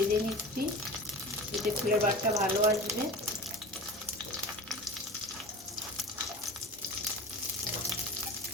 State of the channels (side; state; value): both; normal; correlation 0.34